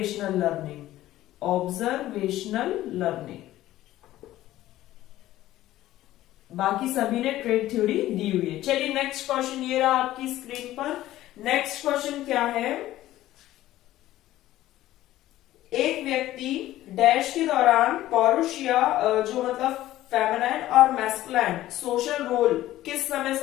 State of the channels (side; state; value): right; quieter; 14.8 dB